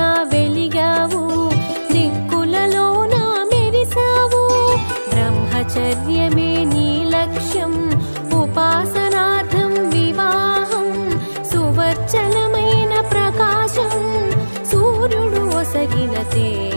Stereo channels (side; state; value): both; inverted; correlation -1.00